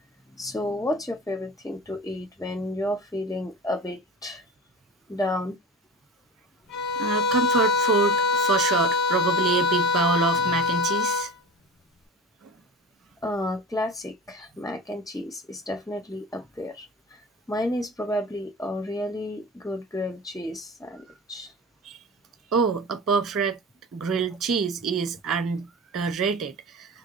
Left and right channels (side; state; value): both; normal; correlation 0.33